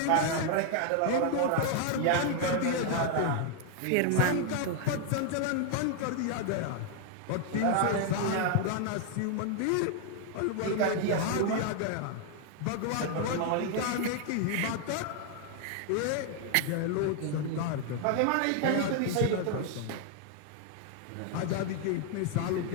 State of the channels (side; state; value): both; different; correlation 0.00